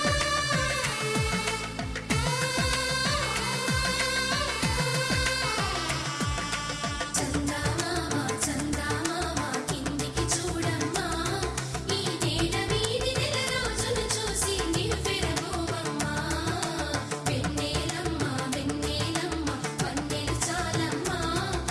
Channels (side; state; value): both; identical; correlation 1.00